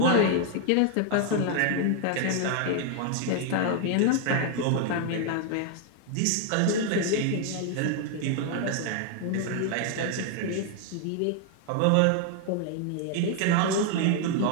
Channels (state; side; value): different; both; correlation 0.00